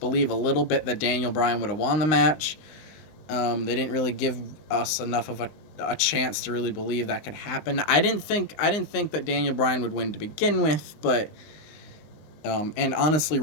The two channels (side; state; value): right; late; 19 ms